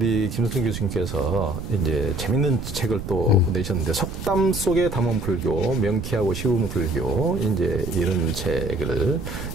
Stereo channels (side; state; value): right; noise; rumble, 7 dB below the sound